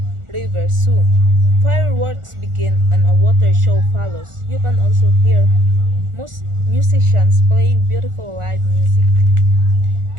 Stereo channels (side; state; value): left; late; 1.4 ms